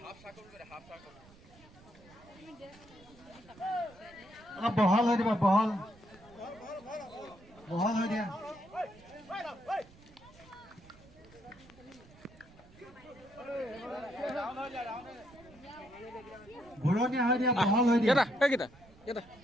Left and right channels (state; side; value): noise; right; rumble, 24 dB below the sound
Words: অলপ বহল হৈ দিবা বহল হৈ দিয়া ঘূৰণীয়া হৈ দিয়া বহল হৈ দিয়া